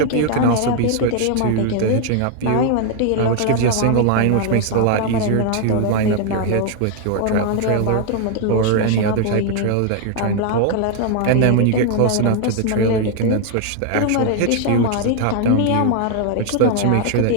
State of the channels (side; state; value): both; different; correlation 0.00